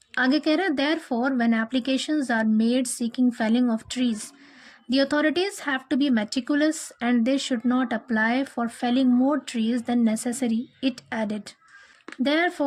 आगे कह रहे हैं, therefore when applications are made seeking felling of trees the authorities have to be meticulous and they should not apply for felling more trees than necessary, it added.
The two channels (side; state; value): both; identical; correlation 1.00